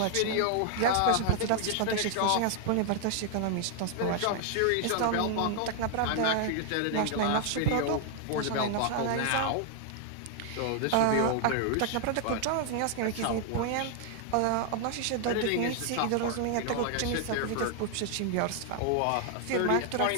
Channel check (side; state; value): both; different; correlation 0.00